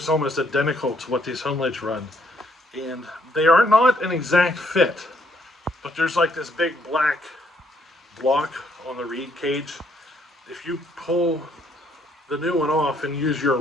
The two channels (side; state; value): both; normal; correlation 0.69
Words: almost identical to what these Homelites run. And they are not an exact fit, but there's like this big black block on the reed cage. If you pull the new one off and use